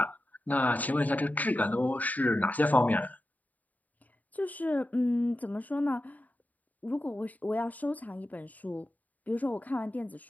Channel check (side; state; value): right; late; 0.077 ms